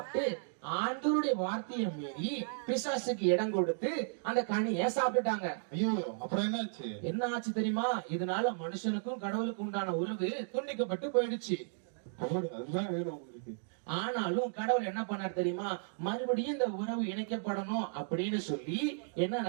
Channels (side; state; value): left; silent; digital silence